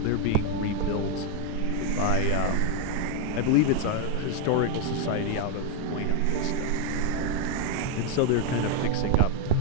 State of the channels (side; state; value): both; different; correlation 0.01